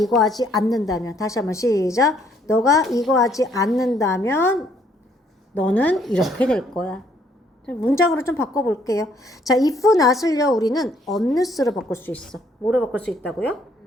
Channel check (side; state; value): both; normal; correlation 0.66